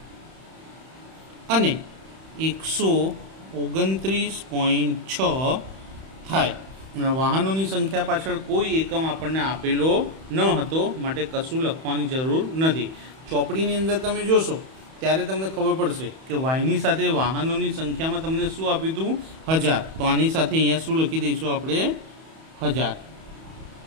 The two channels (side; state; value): left; late; 31 ms